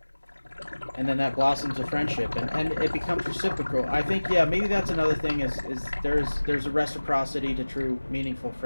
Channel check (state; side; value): inverted; both; correlation -1.00